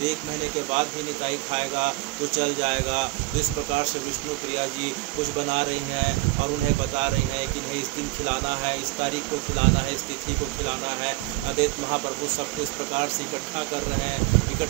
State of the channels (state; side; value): quieter; left; 20.1 dB